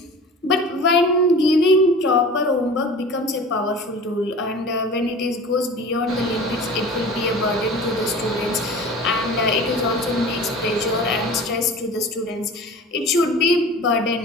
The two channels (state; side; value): normal; both; correlation 0.39